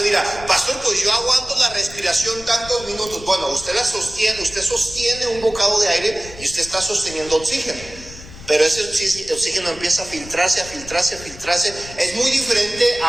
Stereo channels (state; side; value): noise; left; rumble, 16 dB below the sound